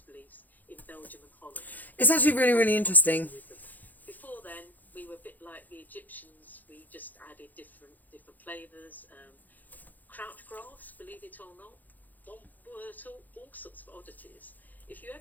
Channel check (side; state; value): right; late; 0.083 ms